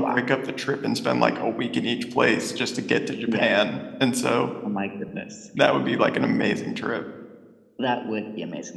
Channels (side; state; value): both; identical; correlation 1.00